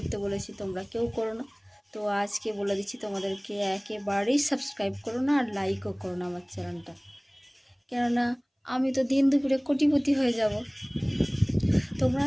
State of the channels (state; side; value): identical; both; correlation 1.00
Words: বলেছি, তোমরা কেউ করো না। তো আজকে বলে দিচ্ছি তোমাদেরকে, একেবারেই সাবস্ক্রাইব করো না আর লাইকও করো না আমার চ্যানেলটা। কেননা আমি তো দিন দুপুরে কোটিপতি হয়ে যাব। তোমরা